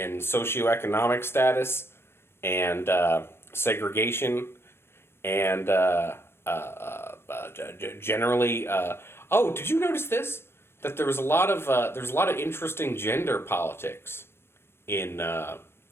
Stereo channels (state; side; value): late; right; 0.12 ms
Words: socioeconomic status and segregation and generally. Oh, did you notice this? That there's a lot of interesting gender politics in